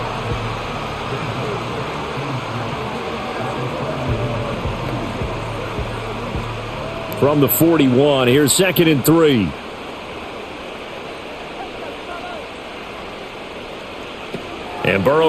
From the 41, here's 2nd and 3. And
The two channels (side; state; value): both; identical; correlation 1.00